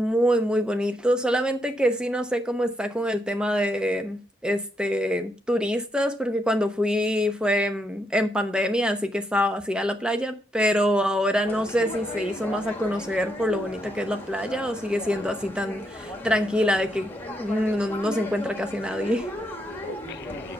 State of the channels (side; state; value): both; normal; correlation 0.79